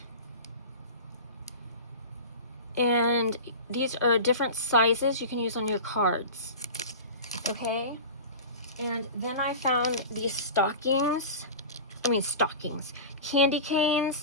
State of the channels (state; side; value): inverted; both; correlation -0.31